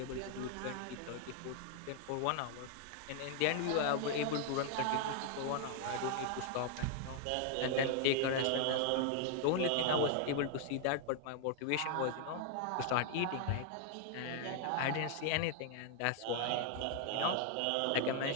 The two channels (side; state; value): both; different; correlation 0.00